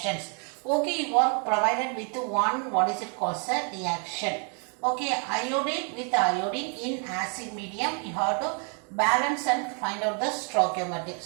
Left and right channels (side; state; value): left; quieter; 39.9 dB